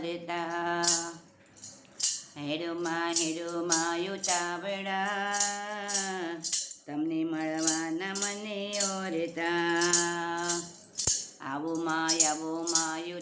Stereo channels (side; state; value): both; identical; correlation 1.00